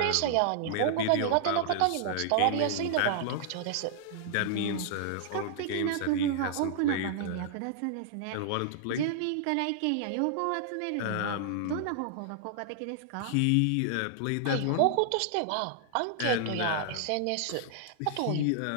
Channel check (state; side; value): different; both; correlation -0.01